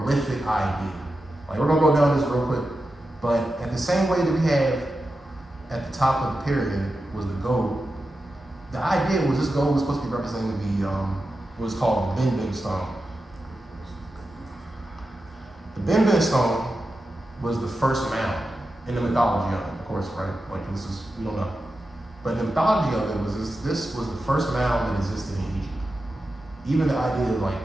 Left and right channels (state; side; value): normal; both; correlation 0.91